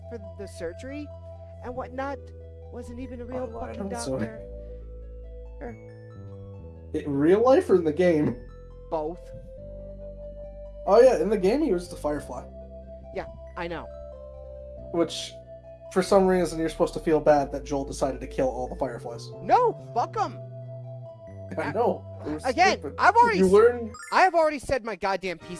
for the surgery and whatnot wasn't even a real fucking doctor. In real life or in the game? Both. Oh yeah, in the game he was the Firefly. Yeah, I know. Which, for some reason, you're supposed to feel bad that Joel decided to kill all the Fireflies. No, fuck them. I know. Again, Stupid. I have already said my goddamn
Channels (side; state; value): both; identical; correlation 1.00